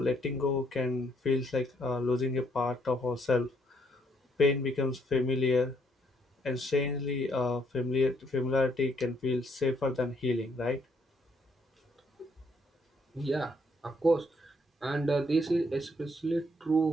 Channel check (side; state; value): both; normal; correlation 0.70